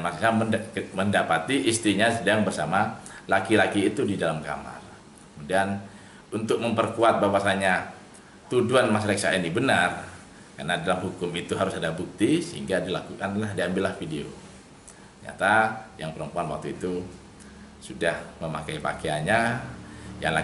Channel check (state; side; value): identical; both; correlation 1.00